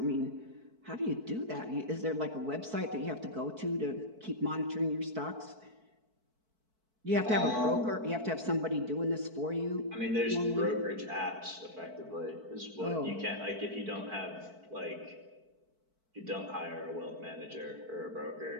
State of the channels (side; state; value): left; late; 4.5 ms